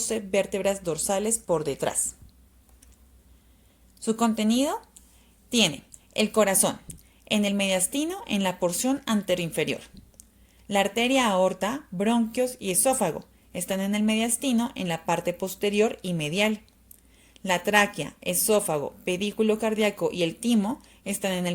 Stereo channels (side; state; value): both; identical; correlation 1.00